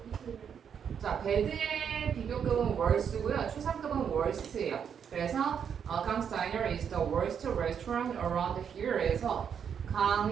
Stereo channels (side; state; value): left; quieter; 7.7 dB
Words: 자, 배드의 비교급은 worst고요. 추상급은 worst예요. 그래서 강스타이너 is the worst restaurant around here에서